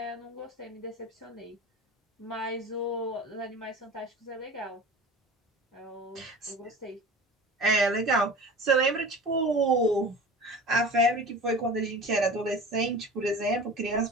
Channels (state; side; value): normal; both; correlation 0.37